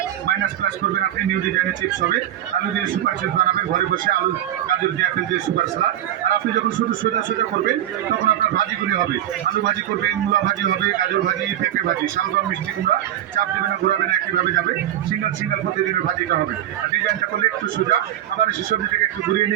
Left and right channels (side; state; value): left; quieter; 11.8 dB